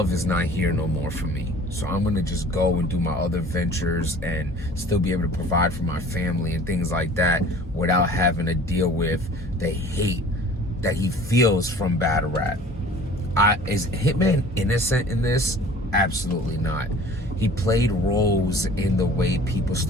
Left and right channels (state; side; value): normal; both; correlation 0.47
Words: is not here no more for me. So I'm going to just go and do my other ventures and still be able to provide for my family and things like that without having to deal with the hate that he feels from battle rap. Is Hitman innocent in this? Absolutely not. He played roles in the way people